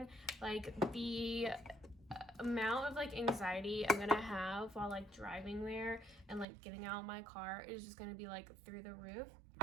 like the amount of like anxiety I'm gonna have while like driving there and like getting out of my car is just gonna be like through the roof.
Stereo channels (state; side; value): drops out; left; at 6.5 s